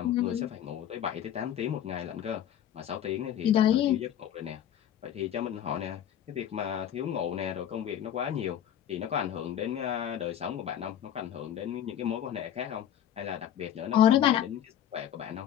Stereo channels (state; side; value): quieter; right; 10.3 dB